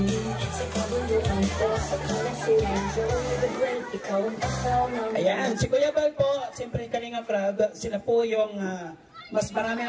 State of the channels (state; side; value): identical; both; correlation 1.00